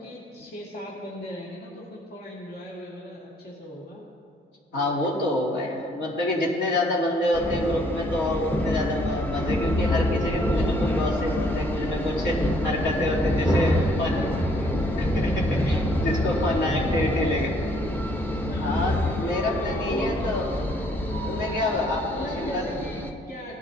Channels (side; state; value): both; normal; correlation 0.64